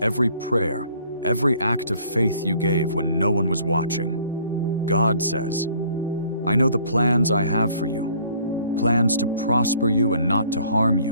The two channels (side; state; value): both; inverted; correlation -0.58